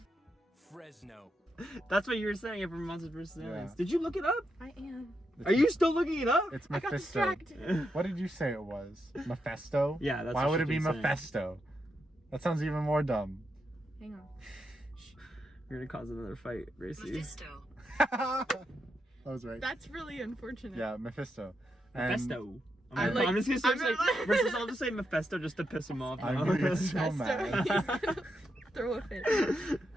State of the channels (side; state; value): both; normal; correlation 0.83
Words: Fresno. That's what you were saying from Monsters vs. Aliens. Yeah. Did you look it up? I am. Are you still looking it up? It's I got Mephisto. distracted. What did you say it was? Mephisto? Yeah, that's Why what would she it be keeps saying. Mephisto? That sounds even more dumb. Hang on. You're gonna cause another fight, Gracie. Mephisto. That was right. That's really unfortunate. Yeah, Mephisto. And Mephisto. I like- I'm just gonna I'm say, not- versus I'll just say Mephisto just to piss him off. I'm now. gonna get so That's mad. He's gonna throw a fit.